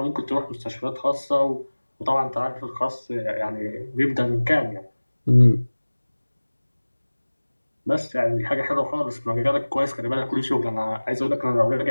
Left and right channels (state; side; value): inverted; both; correlation -1.00